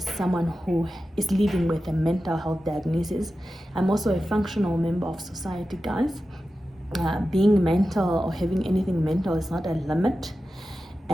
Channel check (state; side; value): normal; both; correlation 0.93